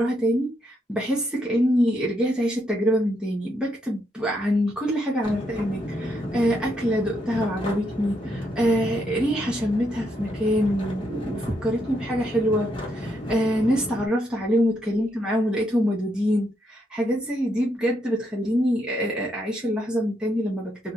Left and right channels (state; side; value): normal; both; correlation 0.77